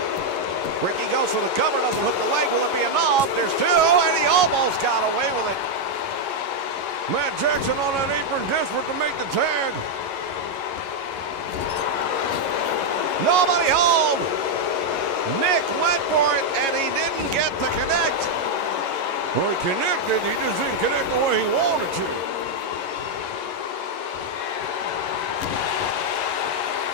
Ricky goes for the cover, doesn't hook the leg. Will it be enough? There's two, and he almost got away with it. Matt Jackson on that apron, desperate to make the tag. Nobody home. Nick went for it, and he didn't get to connect. Well, he connected, he just didn't connect the way he wanted to.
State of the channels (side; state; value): left; late; 11 ms